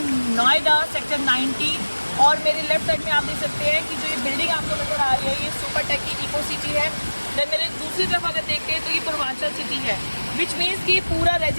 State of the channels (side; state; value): both; inverted; correlation -1.00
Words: Noida sector 90 और मेरे लेफ्ट साइड में आप देख सकते हैं कि जो ये बिल्डिंग आपको नजर आ रही है ये सुपर टेक की इको सिटी है। देन मेरे दूसरी तरफ अगर देखते हैं तो ये पूर्वांचल सिटी है, विच मीन्स कि पूरा